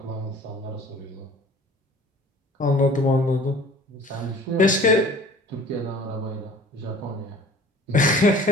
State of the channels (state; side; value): normal; both; correlation 0.47